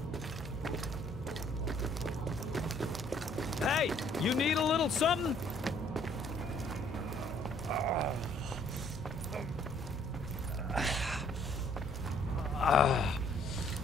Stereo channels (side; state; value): both; normal; correlation 0.62